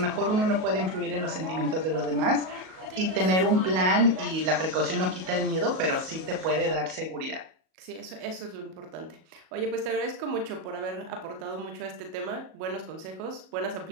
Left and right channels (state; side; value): late; left; 38 ms